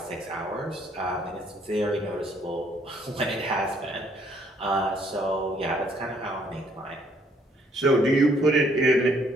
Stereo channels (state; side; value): normal; both; correlation 0.66